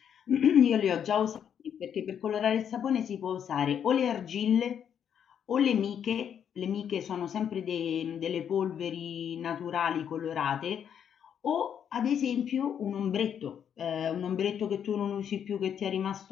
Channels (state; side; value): quieter; right; 8.5 dB